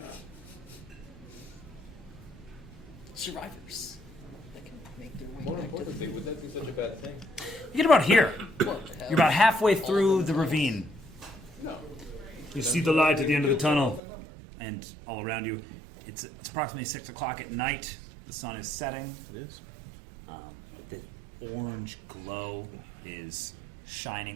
Survivors. That can make their way more back to importantly, would that be such a bad thing? You get about here. What the hell? You're about halfway All through of the them. ravine. No. You see the light at the end of the tunnel, and all around you, it's approximately 6 o'clock at night. The sun is setting. It is. The orange glow is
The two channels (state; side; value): drops out; left; at 14.0 s